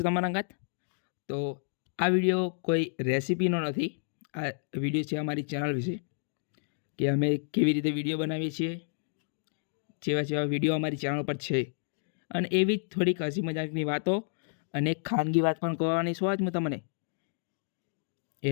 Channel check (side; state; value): right; silent; digital silence